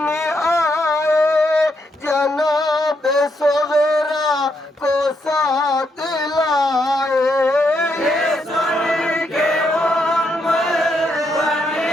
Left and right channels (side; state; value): both; normal; correlation 0.78